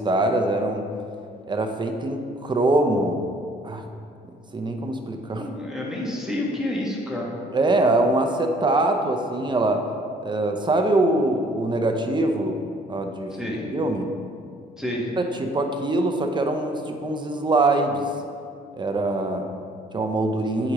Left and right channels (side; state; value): both; normal; correlation 0.60